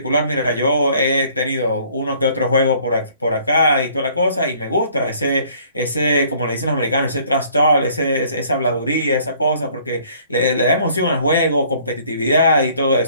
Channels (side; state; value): both; inverted; correlation -0.58